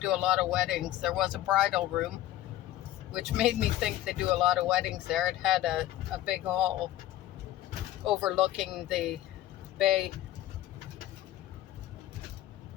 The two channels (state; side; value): quieter; right; 14.0 dB